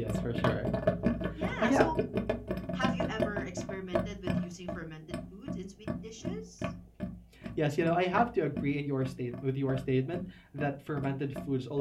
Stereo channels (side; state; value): both; identical; correlation 1.00